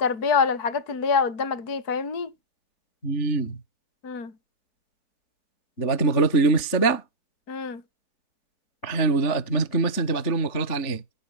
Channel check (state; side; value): late; right; 3.5 ms